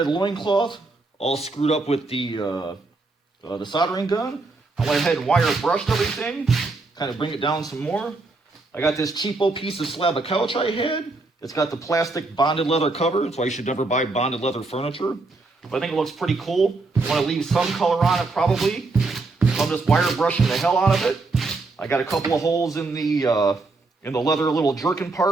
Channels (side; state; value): left; quieter; 3.5 dB